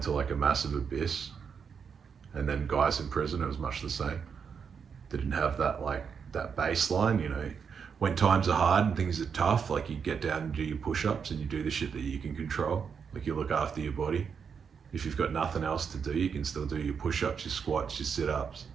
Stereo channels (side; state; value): left; quieter; 6.5 dB